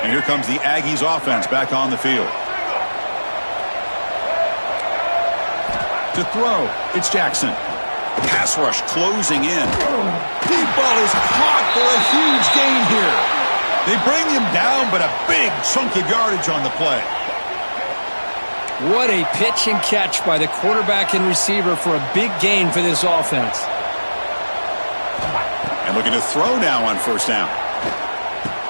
And here comes the Aggies offense back on the field. To throw, it's Jackson. Pass rush closing in. Deep ball is caught for a huge gain here. They bring him down, but a big chunk of yardage on the play. What a pitch and catch by the quarterback and receiver for a big gain for this offense. And Looking to throw now on first down.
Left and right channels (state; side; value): inverted; both; correlation -1.00